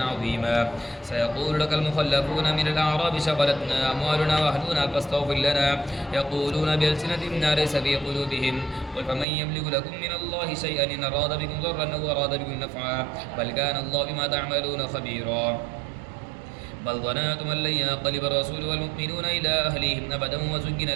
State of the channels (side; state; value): left; drops out; at 9.2 s